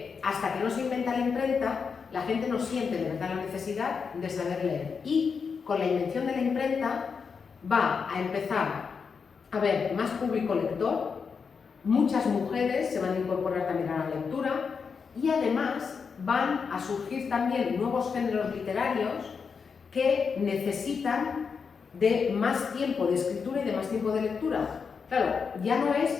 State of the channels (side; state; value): right; quieter; 5.7 dB